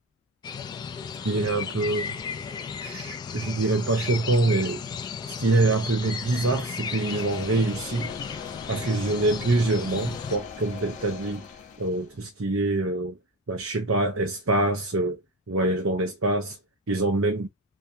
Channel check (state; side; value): normal; both; correlation 0.32